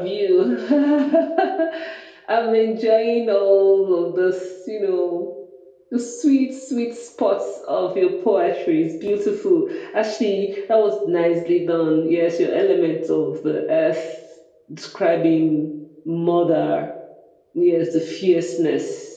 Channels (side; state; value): both; identical; correlation 1.00